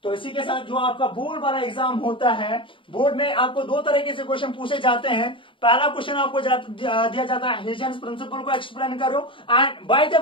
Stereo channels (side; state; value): right; late; 0.25 ms